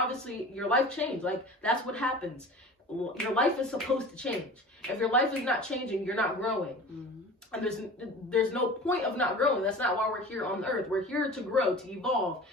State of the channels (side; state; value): both; normal; correlation 0.38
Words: your life changed. Like, that's what happens. Your life is supposed to change. If your life is not changing, you're not growing. And there's no point of not growing. That's not why we're here on the earth. We're here to grow, to evolve.